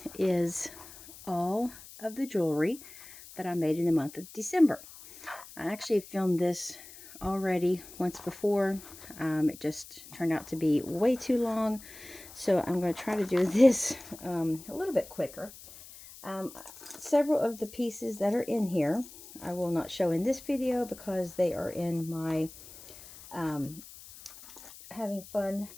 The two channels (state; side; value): noise; left; hiss, 17 dB below the sound